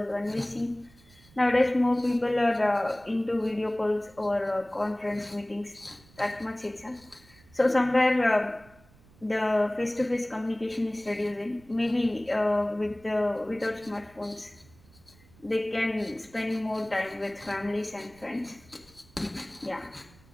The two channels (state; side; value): noise; right; rumble, 27 dB below the sound